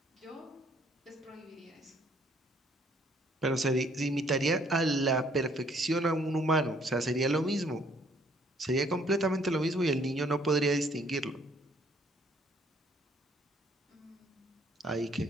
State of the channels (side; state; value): both; normal; correlation 0.64